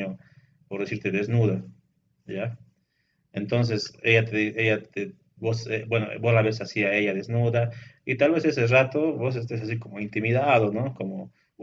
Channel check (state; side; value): identical; both; correlation 1.00